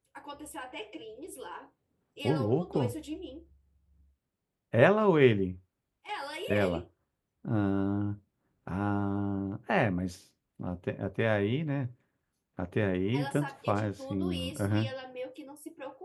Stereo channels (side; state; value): both; identical; correlation 1.00